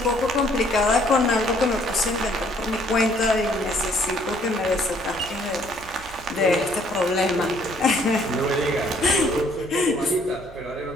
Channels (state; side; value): noise; right; hum, 20 dB below the sound